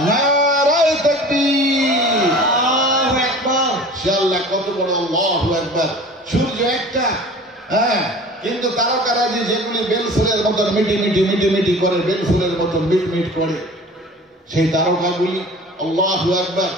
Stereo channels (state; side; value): normal; both; correlation 0.42